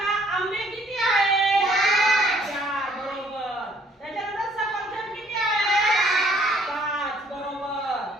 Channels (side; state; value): both; normal; correlation 0.62